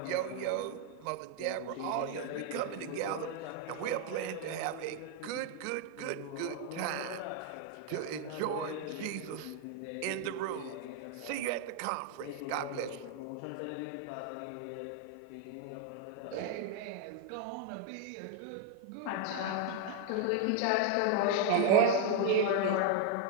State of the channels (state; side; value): different; both; correlation 0.01